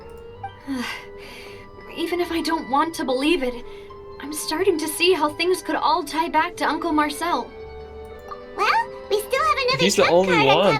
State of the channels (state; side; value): identical; both; correlation 1.00